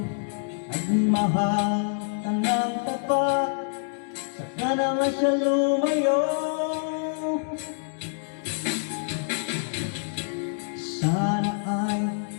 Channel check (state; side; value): silent; right; digital silence